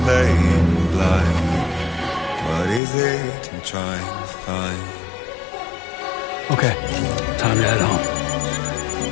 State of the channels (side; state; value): right; drops out; at 2.8 s